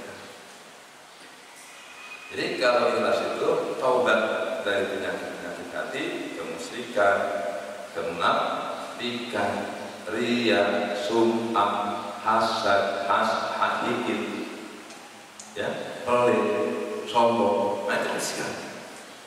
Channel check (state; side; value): identical; both; correlation 1.00